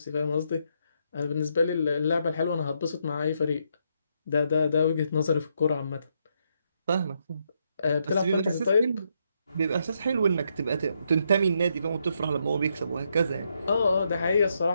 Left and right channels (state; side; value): inverted; both; correlation -0.78